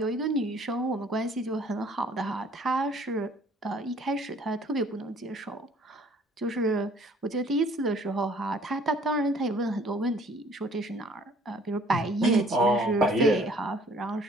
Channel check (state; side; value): normal; both; correlation 0.56